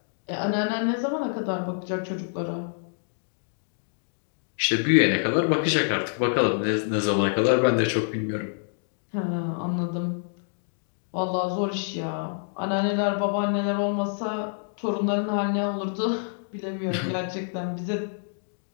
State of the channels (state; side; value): silent; right; digital silence